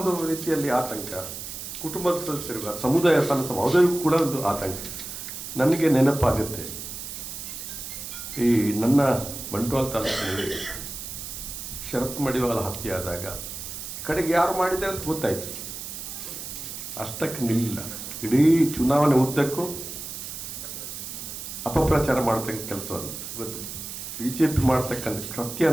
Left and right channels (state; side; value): noise; right; hiss, 8 dB below the sound